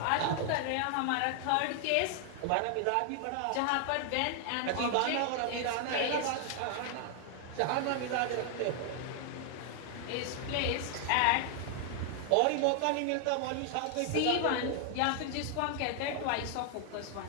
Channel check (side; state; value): both; different; correlation 0.00